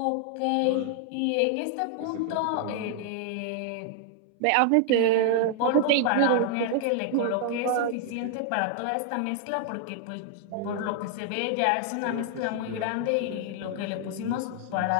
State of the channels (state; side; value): different; both; correlation 0.00